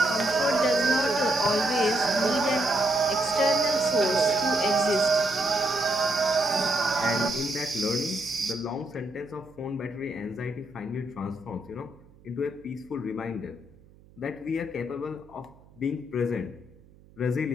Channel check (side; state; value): right; noise; hum, 26 dB below the sound